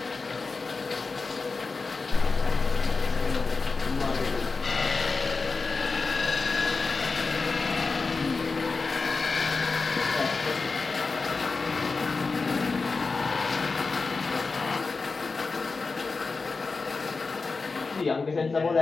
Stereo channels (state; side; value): quieter; right; 4.2 dB